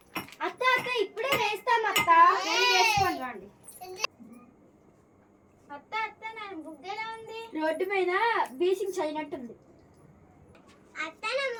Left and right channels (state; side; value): identical; both; correlation 1.00